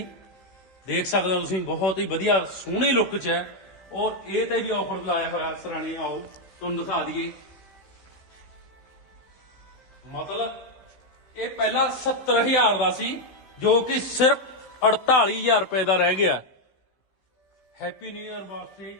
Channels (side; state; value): right; late; 15 ms